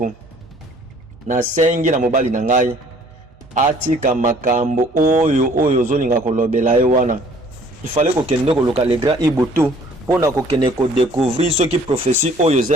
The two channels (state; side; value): normal; both; correlation 0.56